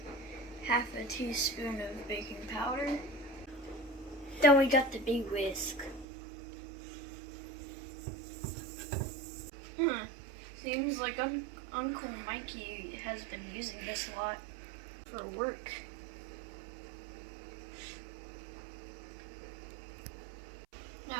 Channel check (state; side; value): drops out; left; at 6.1 s